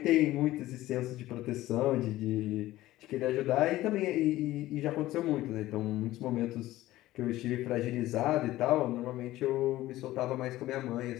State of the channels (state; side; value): quieter; right; 16.0 dB